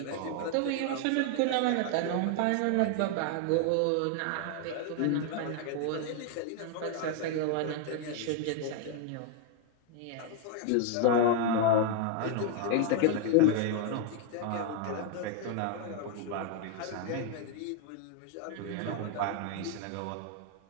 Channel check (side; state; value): both; different; correlation 0.00